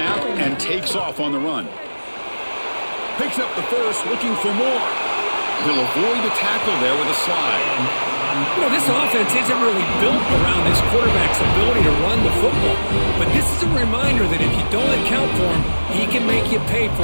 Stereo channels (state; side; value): inverted; both; correlation -1.00